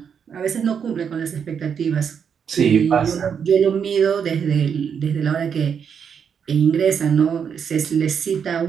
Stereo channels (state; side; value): quieter; left; 7.2 dB